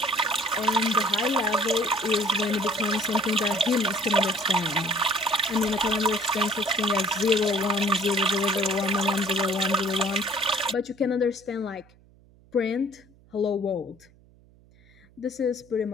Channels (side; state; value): right; noise; hum, 28 dB below the sound